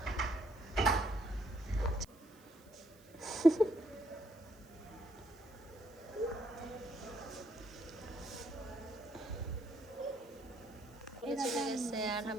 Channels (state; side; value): noise; right; hiss, 26 dB below the sound